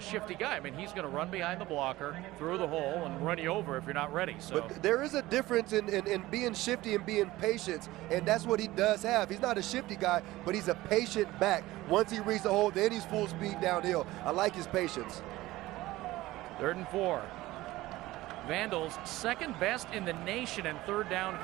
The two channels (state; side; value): quieter; left; 17.7 dB